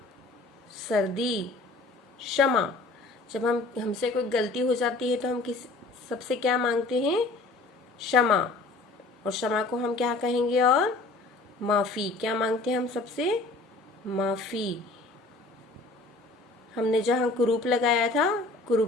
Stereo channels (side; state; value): right; quieter; 3.4 dB